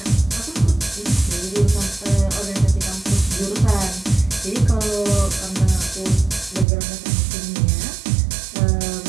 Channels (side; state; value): left; drops out; at 6.7 s